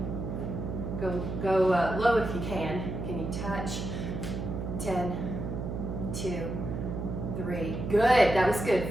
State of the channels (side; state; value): right; noise; hum, 4 dB below the sound